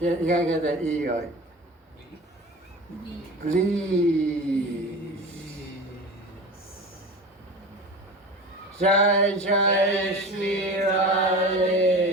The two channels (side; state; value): both; normal; correlation 0.34